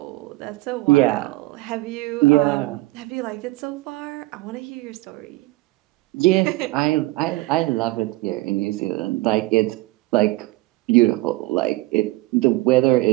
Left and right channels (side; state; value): left; quieter; 20.4 dB